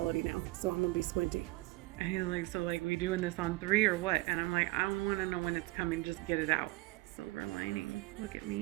now, so I'm gonna be squinty. And he's like, so like we doing this on 3 or what? And I'm like, I don't wanna know when it's coming, just get it out. Silver lining. Look at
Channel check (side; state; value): left; quieter; 21.2 dB